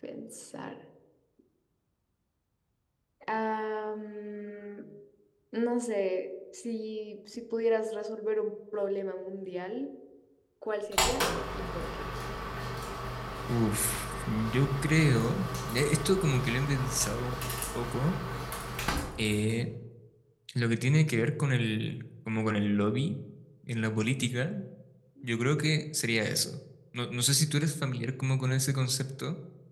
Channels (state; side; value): identical; both; correlation 1.00